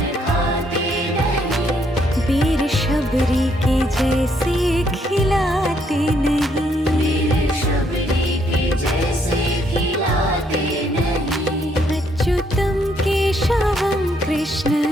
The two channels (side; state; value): both; normal; correlation 0.71